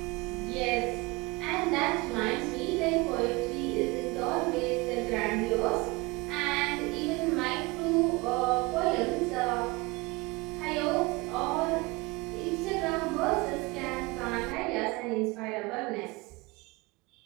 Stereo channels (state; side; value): quieter; left; 24.5 dB